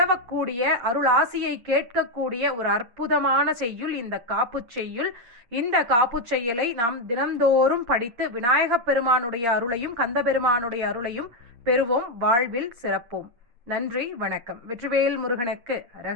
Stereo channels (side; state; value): left; late; 8.8 ms